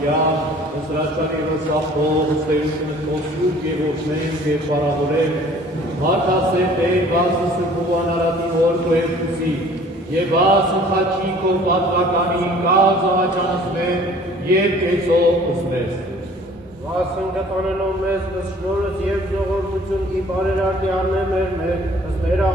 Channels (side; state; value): both; normal; correlation 0.52